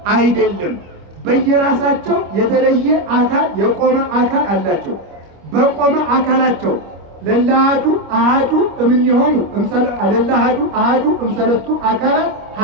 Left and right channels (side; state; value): left; late; 25 ms